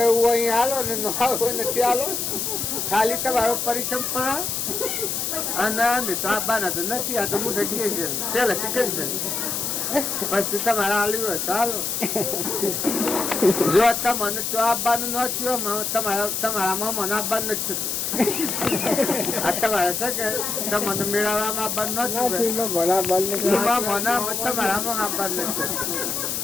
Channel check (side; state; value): left; noise; hiss, 1 dB below the sound